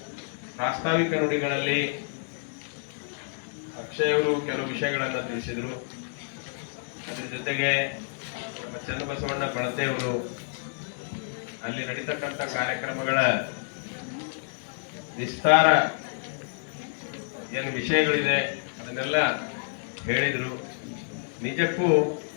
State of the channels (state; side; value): silent; right; 59 dB below the other